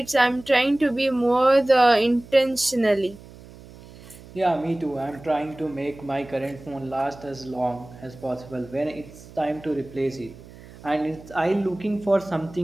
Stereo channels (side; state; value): right; noise; hum, 19 dB below the sound